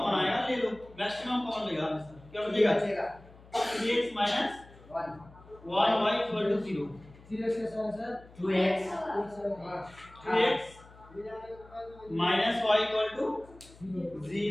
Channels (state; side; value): noise; left; hum, 23 dB below the sound